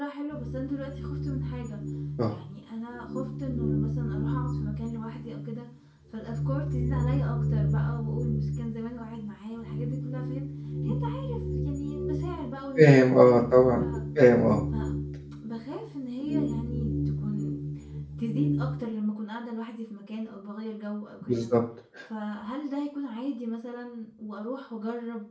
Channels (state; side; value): identical; both; correlation 1.00